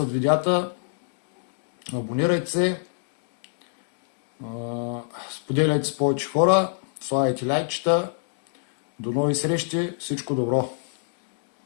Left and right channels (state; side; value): silent; right; digital silence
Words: видеята, абонирайте се, Споделяйте с повече хора, слагайте лайкчета. До нови срещи, всичко добро!